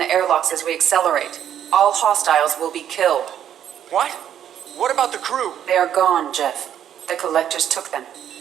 airlocks as we accelerate. All hostiles will be killed. What? What about the crew? They are gone, Jeff. The collectors took them.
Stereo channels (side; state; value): left; quieter; 10.0 dB